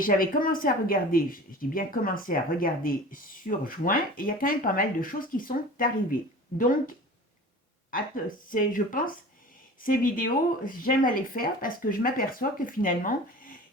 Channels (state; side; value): normal; both; correlation 0.39